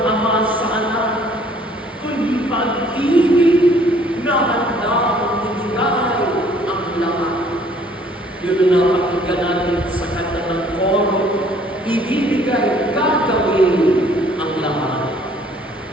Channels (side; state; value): both; normal; correlation 0.59